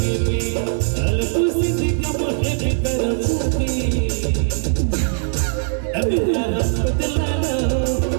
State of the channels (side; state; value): left; silent; digital silence